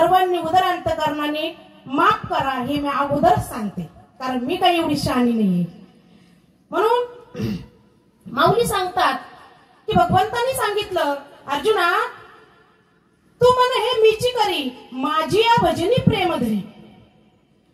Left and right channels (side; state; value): both; identical; correlation 1.00